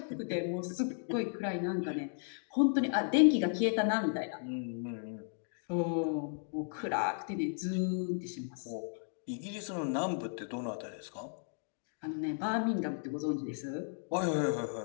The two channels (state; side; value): silent; right; 55 dB below the other